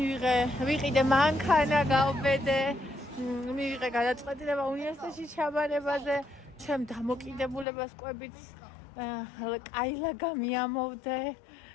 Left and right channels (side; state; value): right; drops out; at 7.7 s